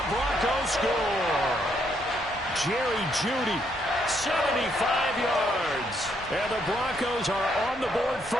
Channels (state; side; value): normal; both; correlation 0.73